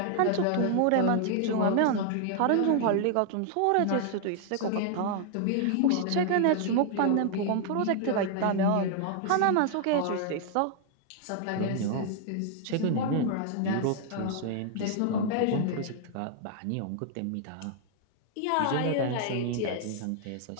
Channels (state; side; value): different; both; correlation 0.00